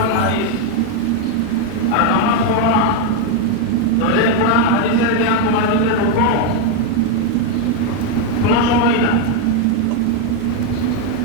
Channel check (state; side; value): different; both; correlation 0.01